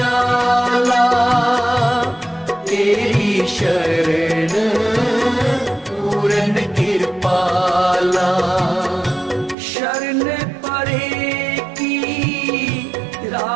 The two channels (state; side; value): drops out; left; at 9.6 s